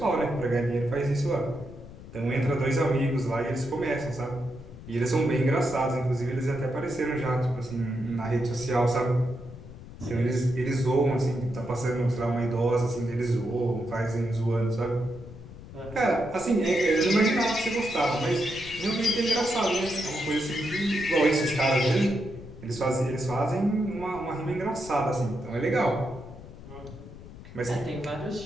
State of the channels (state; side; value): noise; left; rumble, 15 dB below the sound